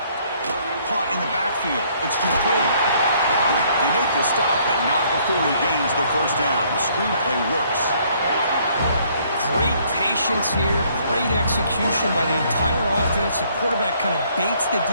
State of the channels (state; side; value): inverted; both; correlation -0.64